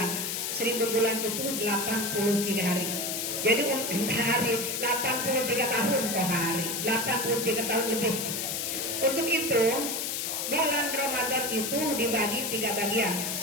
1000 bulan itu 83 hari. Jadi untuk hari 83 tahun per hari, 83 tahun lebih. Untuk itu bulan Ramadan itu dibagi 3 bagian.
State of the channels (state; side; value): noise; left; hiss, 2 dB below the sound